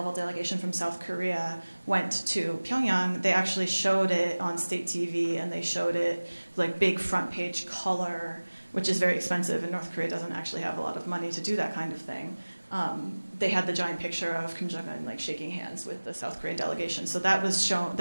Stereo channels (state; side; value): inverted; both; correlation -1.00